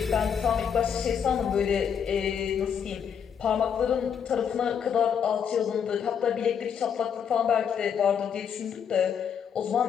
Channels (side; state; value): right; quieter; 7.7 dB